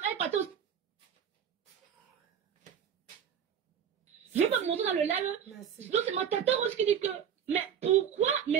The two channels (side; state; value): left; quieter; 8.3 dB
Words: partait aussi. Je vais pas me montrer dans le live. Donc c'est ma tata Rose qui dit que, mais pourquoi,